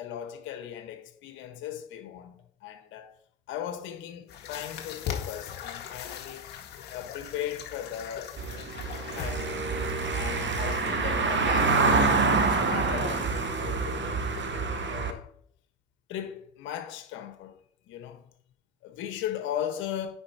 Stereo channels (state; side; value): normal; both; correlation 0.00